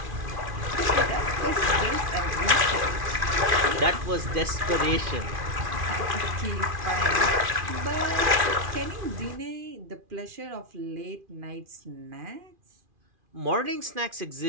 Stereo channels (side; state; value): left; late; 2.4 ms